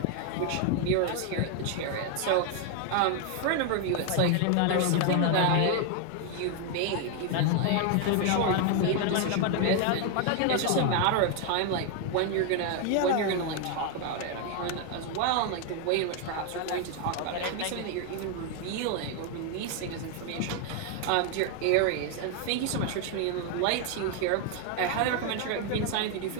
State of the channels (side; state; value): both; different; correlation 0.01